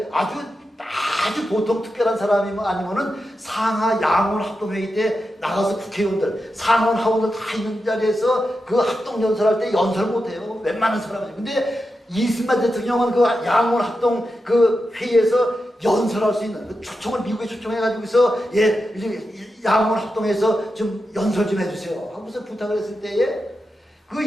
아주 보통 특별한 사람이면 아니면은 상하 양원 합동회의 때 나가서 국회의원들, 상원 하원들 다 있는 자리에서 그 합동 연설할 때 연설 못해요. 웬만한 사람이죠. 근데 이승만 대통령은 그 양원 합동 그 회의에서 연설할 수 있는 그 초청을 미국에 초청해가지고서 양원 합동에서 좀 연설 좀 해주세요 하고서 부탁을 했을 때에 그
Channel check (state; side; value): normal; both; correlation 0.89